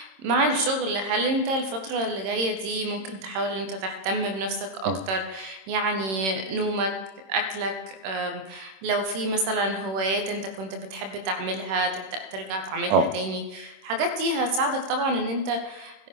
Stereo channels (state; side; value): late; left; 26 ms